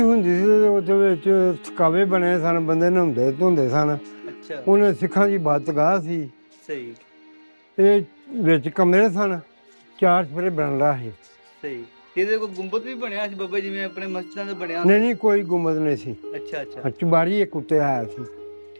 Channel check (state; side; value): inverted; both; correlation -1.00